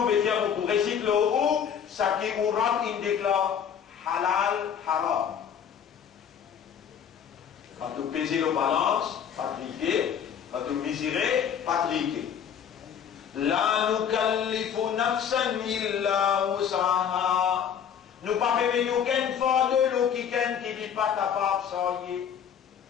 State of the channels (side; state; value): right; quieter; 8.2 dB